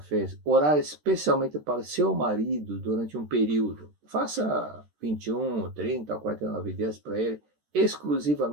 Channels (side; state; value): left; late; 13 ms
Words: orar especialmente para seu marido durante um período? Faça 21, 30, 49 dias para ele,